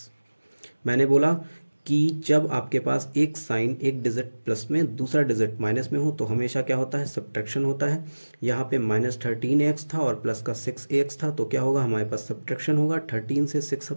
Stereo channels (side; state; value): both; inverted; correlation -1.00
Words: मैंने बोला कि जब आपके पास एक साइन एक डिजिट प्लस में दूसरा डिजिट माइनस में हो तो हमेशा क्या होता है, सब्ट्रैक्शन होता है। यहाँ पे माइनस 13ax था और प्लस का 6ax था, तो क्या होगा, हमारे पास सब्ट्रैक्शन होगा। 13 से 6